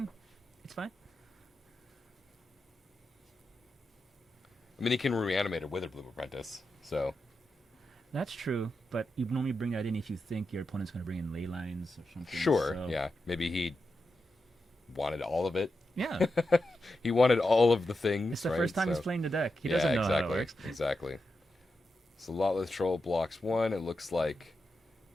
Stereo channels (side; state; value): both; normal; correlation 0.88